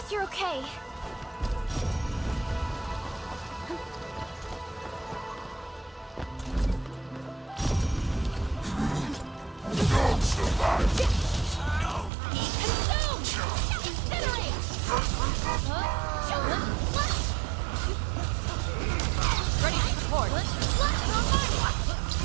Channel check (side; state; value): left; drops out; at 12.1 s